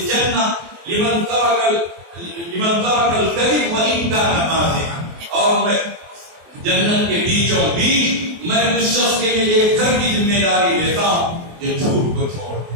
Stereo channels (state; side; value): late; left; 24 ms